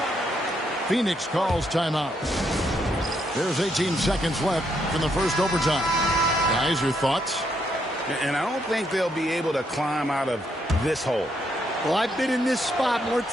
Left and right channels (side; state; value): both; normal; correlation 0.75